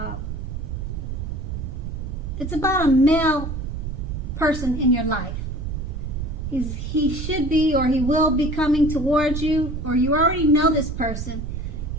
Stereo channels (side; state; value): right; noise; rumble, 5 dB below the sound